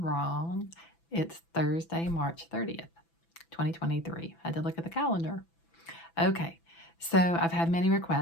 It's Thursday, March 30th, 2023. I had to look at the calendar. Okay. So I've had many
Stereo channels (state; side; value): late; right; 6.0 ms